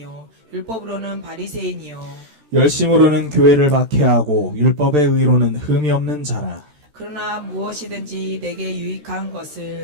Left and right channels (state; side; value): late; left; 13 ms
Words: 율법으로는 바리새인이요 열심으로는 교회를 박해하고 율법의 의로는 흠이 없는 자라. 그러나 무엇이든지 내게 유익한